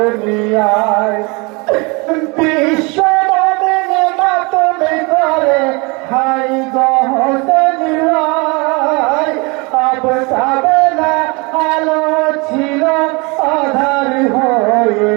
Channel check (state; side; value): quieter; left; 28.6 dB